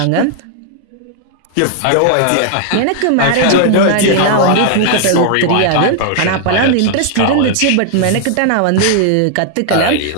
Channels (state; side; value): different; both; correlation 0.00